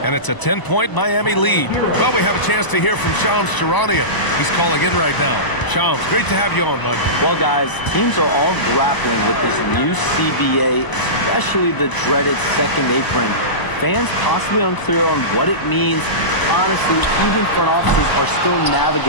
And it's a 10-point Miami lead. Well, we have a chance to hear from Shams Charania. He's calling in right now. Shams, great to have you on, bud. Well, guys, teams are all grappling with this new CBA, especially the dreaded second apron. Fans possibly unclear on what it means. Honestly, even front offices are still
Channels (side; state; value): right; late; 1.0 ms